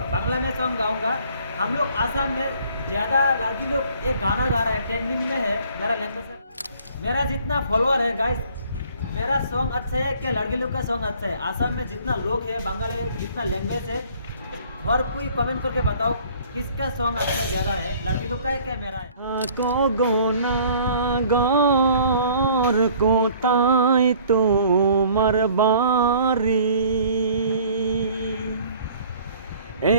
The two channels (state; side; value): inverted; both; correlation -0.54